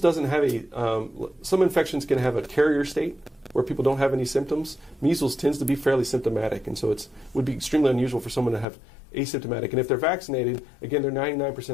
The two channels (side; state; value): right; drops out; at 8.7 s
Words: have some infections can have a carrier state where people don't have any symptoms. Measles tends to be fairly symptomatic, and so it would be extremely unusual for someone to have asymptomatic. And if they're vaccinated, again, they're